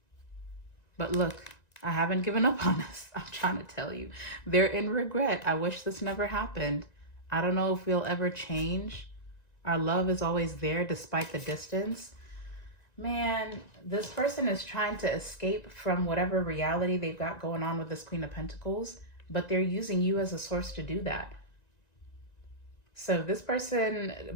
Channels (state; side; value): late; right; 1.9 ms